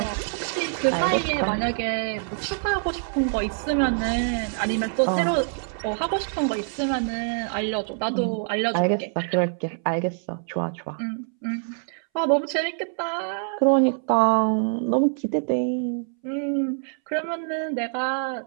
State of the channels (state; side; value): silent; left; 61 dB below the other